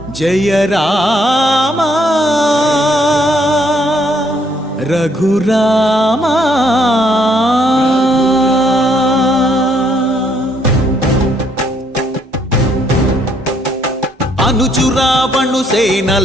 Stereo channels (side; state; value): both; normal; correlation 0.69